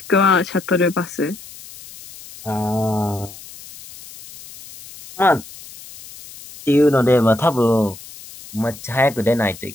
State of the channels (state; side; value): noise; left; hiss, 17 dB below the sound